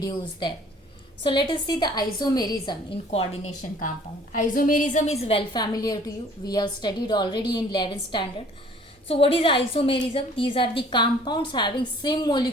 there. So let us see the isomerism in coordination compound. Isomerism is well familiar to you. We have studied already in 11th standard. So what is isomerism? These are the compounds having same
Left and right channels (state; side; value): normal; both; correlation 0.54